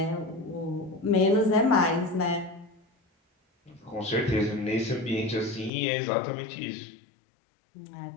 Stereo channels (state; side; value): drops out; right; at 5.7 s